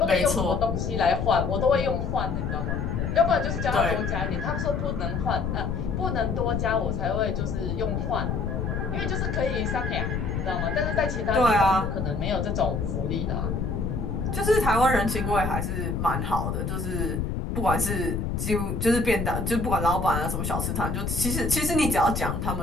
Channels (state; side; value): noise; left; rumble, 2 dB below the sound